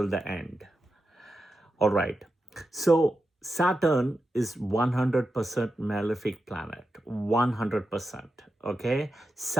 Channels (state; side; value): normal; both; correlation 0.89